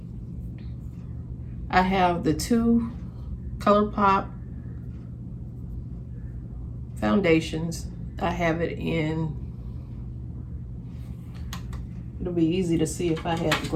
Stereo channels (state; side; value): identical; both; correlation 1.00